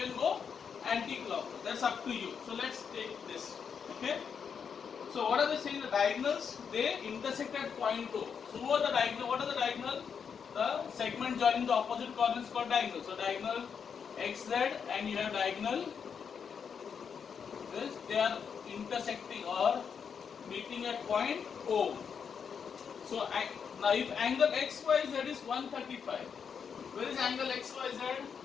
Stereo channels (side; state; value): right; quieter; 6.8 dB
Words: go anti-clockwise. That's up to you. So let's take this. Okay. So what are they saying? The diagonals, they intersect at point O. So who are the diagonal? What are the diagonal? The segment joining the opposite corners called diagonal. So diagonal XZ and you have diagonal this. They are intersecting or meeting at point O. So now if angle XYZ is 135, where is angle XYZ?